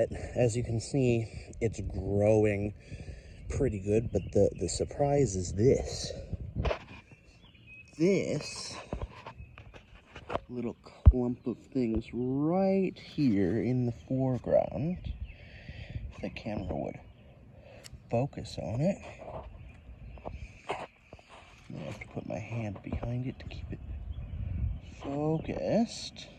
as you can see, it's growing pretty good. But the surprise is this. This little clump of things right here in the foreground, if the camera would focus on it. I have to put my hand behind it to keep it focused.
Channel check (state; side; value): identical; both; correlation 1.00